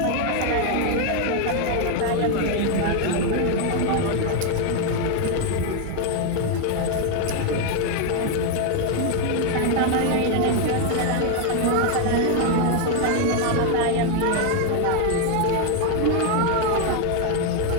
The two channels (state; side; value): different; both; correlation 0.01